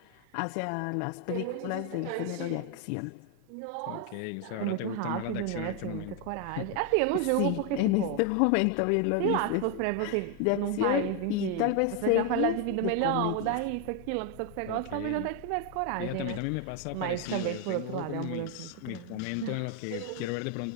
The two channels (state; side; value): different; both; correlation 0.01